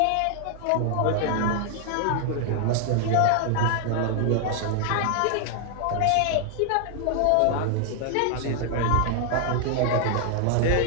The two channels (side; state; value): both; different; correlation 0.00